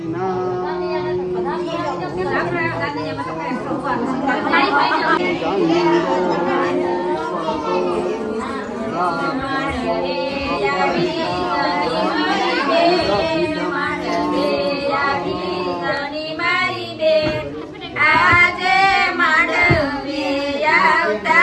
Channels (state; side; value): identical; both; correlation 1.00